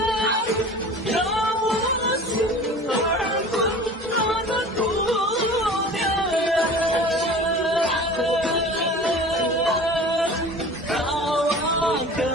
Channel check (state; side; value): normal; both; correlation 0.40